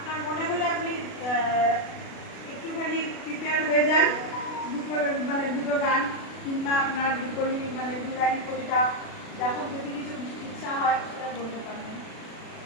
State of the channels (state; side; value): late; right; 36 ms